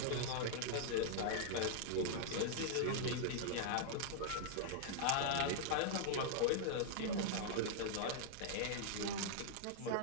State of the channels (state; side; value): different; both; correlation -0.01